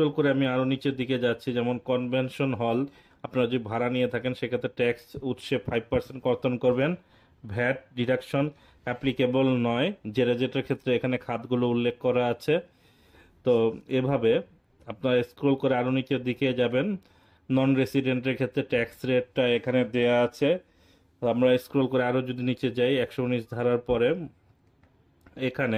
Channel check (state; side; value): identical; both; correlation 1.00